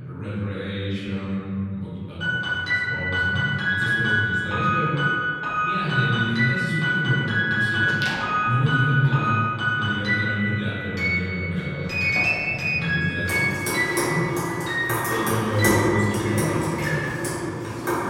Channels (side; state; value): both; identical; correlation 1.00